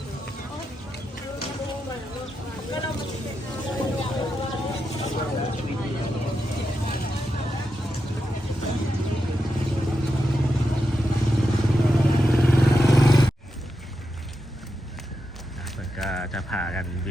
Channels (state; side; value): normal; both; correlation 0.87